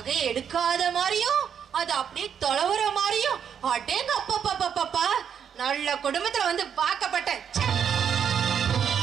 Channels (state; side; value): quieter; left; 8.0 dB